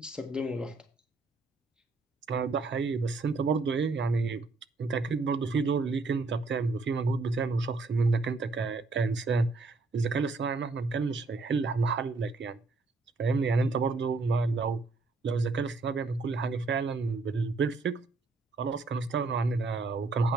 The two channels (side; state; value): left; quieter; 3.7 dB